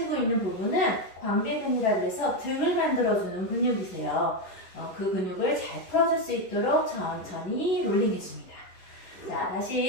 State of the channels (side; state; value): right; late; 11 ms